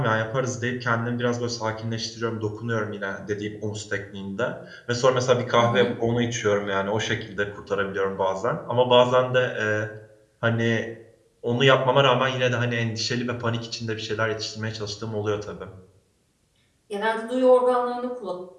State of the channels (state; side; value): identical; both; correlation 1.00